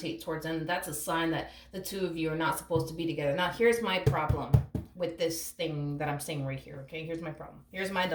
towards them, that's a sign that the two of you are not supposed to be together. Now, here's my problem with this thing that I'm saying right here, okay? Here's my problem. Here's my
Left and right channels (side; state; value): both; identical; correlation 1.00